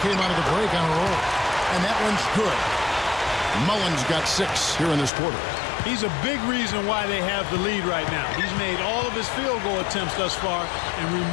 came out of the break on a roll. And that one's good. Mullin's got 6 here in this quarter. He's a big reason why they have the lead right now. He's made all of his field goal attempts thus far and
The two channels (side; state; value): right; drops out; at 5.1 s